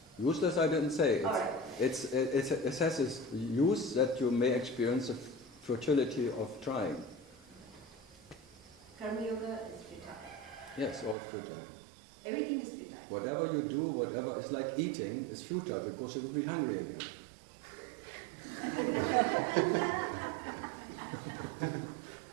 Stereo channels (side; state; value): left; drops out; at 11.2 s